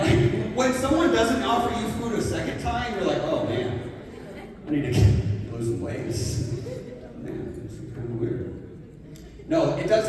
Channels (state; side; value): identical; both; correlation 1.00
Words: when someone doesn't offer you food a second time, you're like, oh man, I need to lose some weight. Man, this is kind of weird. No, it does